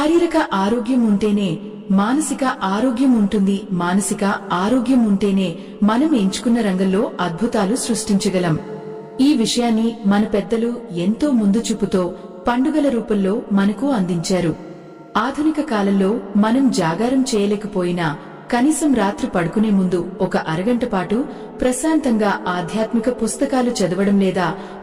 ఆరోగ్యం ఉంటేనే మానసిక ఆరోగ్యం ఉంటుంది. మానసిక ఆరోగ్యం ఉంటేనే మనం ఎంచుకున్న రంగంలో అద్భుతాలు సృష్టించగలం. ఈ విషయాన్ని మన పెద్దలు ఎంతో ముందు చూపుతో పండుగల రూపంలో మనకు అందించారు. ఆధునిక కాలంలో మనం జాగారం చేయలేకపోయినా కనీసం రాత్రి పడుకునే ముందు ఒక అరగంట పాటు ప్రశాంతంగా ఆధ్యాత్మిక పుస్తకాలు చదవడం లేదా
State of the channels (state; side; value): identical; both; correlation 1.00